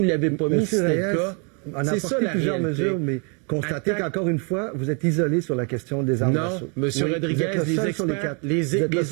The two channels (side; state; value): left; quieter; 36.5 dB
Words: ne l'avez pas mis si Monsieur c'était Reyes, le cas? on a C'est ça apporté la plusieurs réalité. mesures, mais constatez Attaque- qu'encore une fois, vous êtes isolé sur la question des armes Non, d'assaut. M. Oui, Rodriguez, vous êtes le les seul sur experts, quatre. Vous êtes le